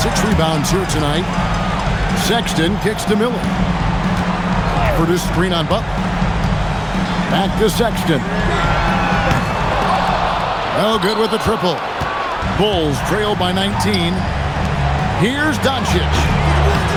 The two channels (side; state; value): both; identical; correlation 1.00